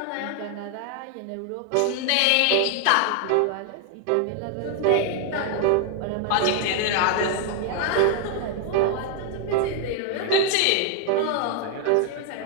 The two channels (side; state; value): both; different; correlation 0.00